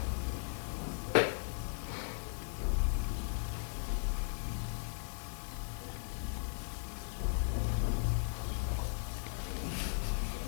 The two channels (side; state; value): right; silent; 53 dB below the other